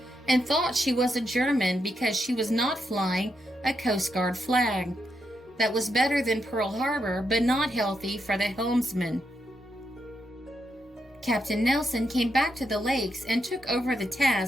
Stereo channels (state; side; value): normal; both; correlation 0.82